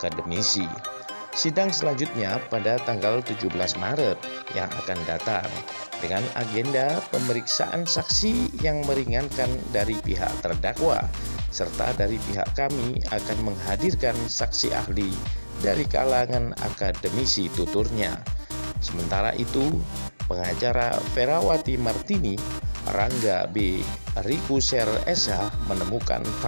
Sidang selanjutnya pada tanggal 17 Maret yang akan datang dengan agenda pemeriksaan saksi yang meringankan dari pihak terdakwa, serta dari pihak kami akan menghadirkan saksi ahli dari kalangan akademisi, tuturnya. Sementara itu, pengacara Ferawati Martini, Rangga B. Rikuser SH, menemukan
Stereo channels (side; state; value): both; inverted; correlation -1.00